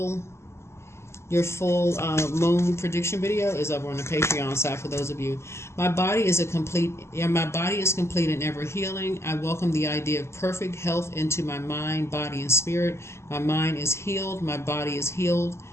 moon prediction video is over on the Patreon side for those of you. My body is complete and ever healing. I welcome the idea of perfect health into my mind, body, and spirit. My mind is healed. My body is healed.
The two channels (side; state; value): right; late; 0.13 ms